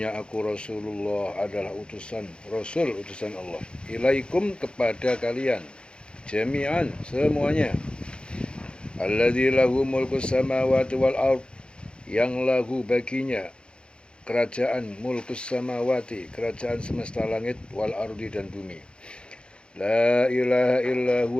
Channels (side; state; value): right; late; 0.054 ms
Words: aku Rasulullah adalah Rasul utusan Allah. Ilaikum kepada kalian, jami'an semuanya. Alladzi lahu mulkus samawati wal ard, yang lahu baginya kerajaan mulkus samawati, kerajaan semesta langit, wal ardi dan bumi. La ilaha illa